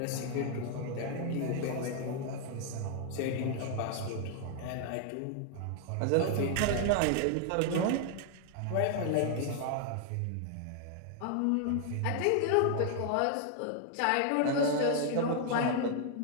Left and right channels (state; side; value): different; both; correlation 0.00